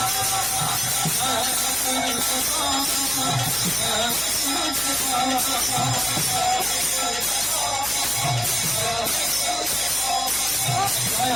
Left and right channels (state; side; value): noise; right; hum, 17 dB below the sound